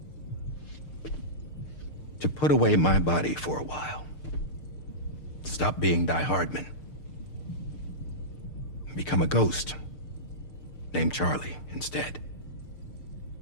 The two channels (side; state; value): right; late; 6.6 ms